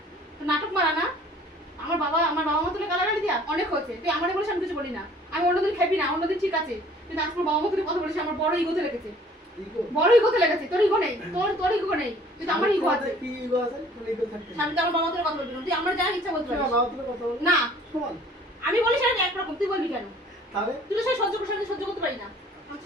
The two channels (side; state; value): both; normal; correlation 0.53